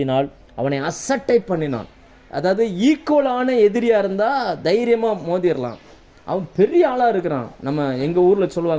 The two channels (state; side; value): identical; both; correlation 1.00